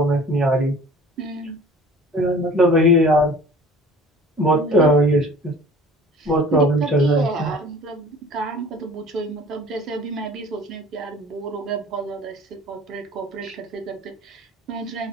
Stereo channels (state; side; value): normal; both; correlation 0.46